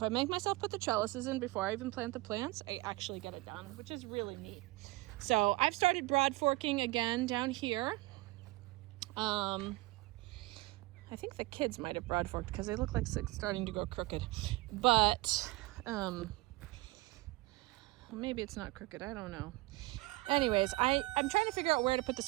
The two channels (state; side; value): quieter; left; 20.9 dB